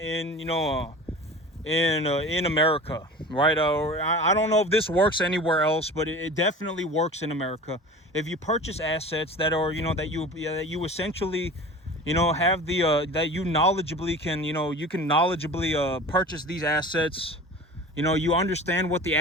America, right? I don't know if this works anywhere else, but it definitely works in America. If you purchase assets that are, that you essentially, have that you knowledgeably can, you can knowledgeably purchase these assets. You understand what the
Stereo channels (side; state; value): both; normal; correlation 0.37